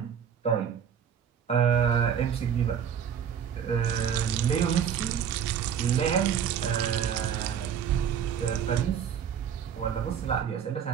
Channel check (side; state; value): left; quieter; 8.2 dB